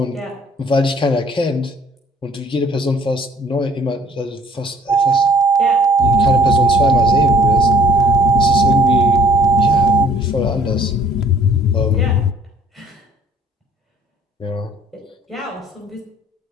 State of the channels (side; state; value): both; normal; correlation 0.58